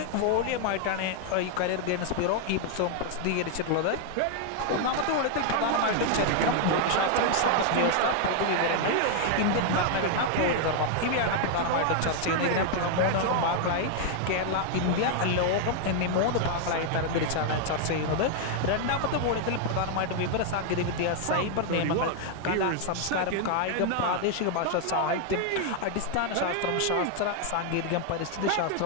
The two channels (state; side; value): different; both; correlation 0.00